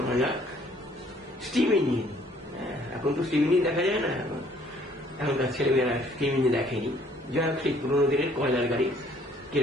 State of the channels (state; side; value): normal; both; correlation 0.60